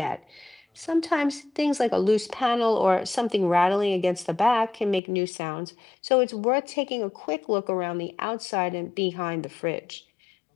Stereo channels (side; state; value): right; drops out; at 5.0 s